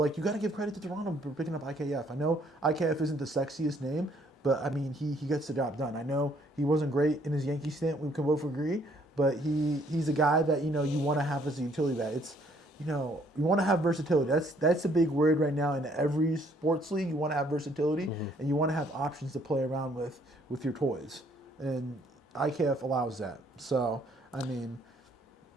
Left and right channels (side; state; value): both; normal; correlation 0.65